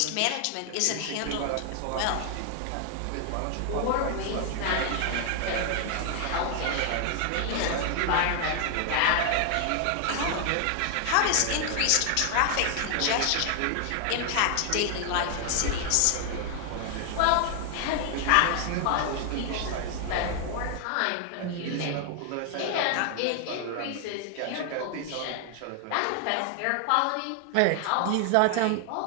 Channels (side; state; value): both; different; correlation 0.00